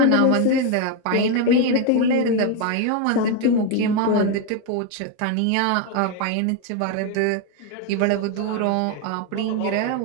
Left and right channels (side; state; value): both; different; correlation 0.01